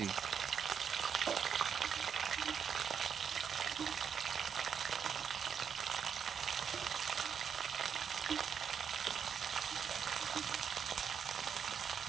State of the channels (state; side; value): quieter; left; 7.3 dB